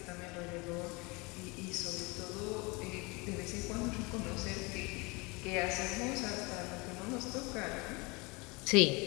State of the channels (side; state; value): right; quieter; 27.1 dB